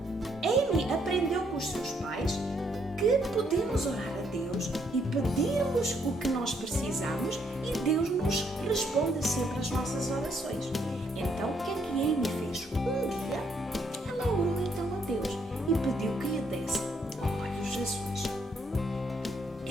Amy aprendeu com os seus pais que podemos orar a Deus e pedirmos o que nós precisamos e Deus nos responde sempre às nossas orações. Então, o que é que Amy fez? Um dia, ela orou então a Deus e pediu que lhe desse olhos azuis.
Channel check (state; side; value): normal; both; correlation 0.71